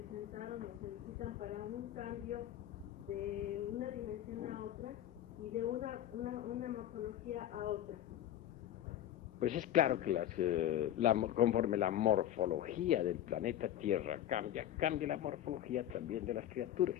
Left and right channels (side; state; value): right; quieter; 11.9 dB